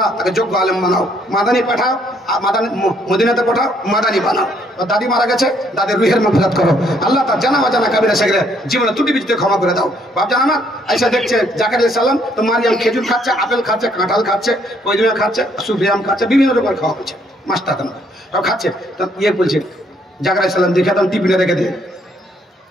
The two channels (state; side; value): normal; both; correlation 0.68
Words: তাকে যোগ্য আলেম বানাও, মাদানি পাঠাও, মাদানি মদিনাতে পাঠাও, মাদানি বানাও। দাদি মারা গেছে, দাদির রুহের মাগফিরাত করো, আল্লাহ তার জানা অজানা কাবিরা সেগরে জীবনে ত্রুটি বিচ্যুতি ক্ষমা করে দাও। বাপজান আমার আইসা দেখছে জাকারিয়া আলাইহিস সালাম তো মারিয়াম খেজুর খাচ্ছে, আপেল খাচ্ছে, কাঁঠাল খাচ্ছে, পয়জুয়া খাচ্ছে, সুফিয়াম খাচ্ছে, বিভিন্ন রকমের খাওয়া হচ্ছে, মাস্তা খাচ্ছে। তো বলছে জাকারিয়া আলাইহিস সালাম দেখে তখন টিফিনে রেখে দে,